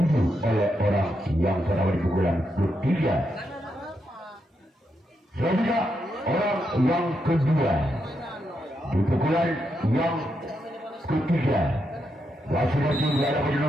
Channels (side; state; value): both; normal; correlation 0.82